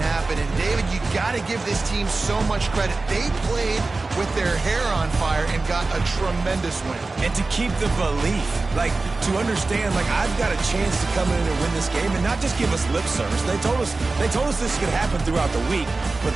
And, David, you got to give this team so much credit. They played with their hair on fire and got a tremendous win. And to keep the belief, like, to understand, like, I've got a chance to come in and win this game and not just give us lip service. They told us this could happen throughout the week, but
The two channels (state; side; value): quieter; left; 3.5 dB